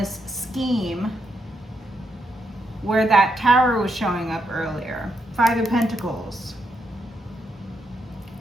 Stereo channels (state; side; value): normal; both; correlation 0.80